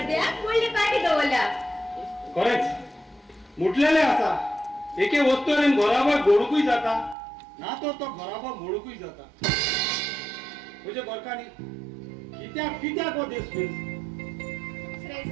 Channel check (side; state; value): left; drops out; at 7.2 s